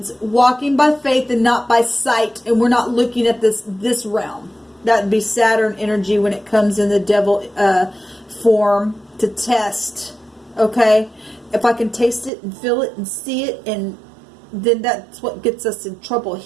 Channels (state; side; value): drops out; left; at 12.3 s